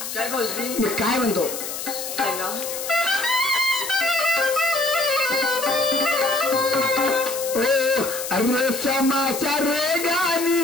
काय भाऊजी मी काय म्हणतो ओ अरे समाचार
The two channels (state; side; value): noise; left; hiss, 7 dB below the sound